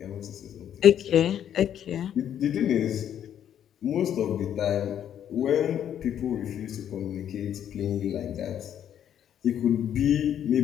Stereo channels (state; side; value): quieter; right; 9.9 dB